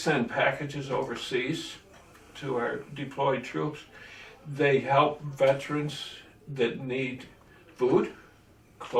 packages overseas to our deployed troops. They help veterans that need food,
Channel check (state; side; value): identical; both; correlation 1.00